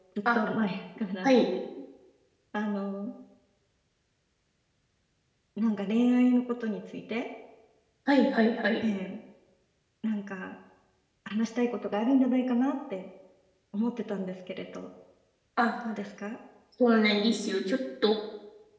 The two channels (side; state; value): both; identical; correlation 1.00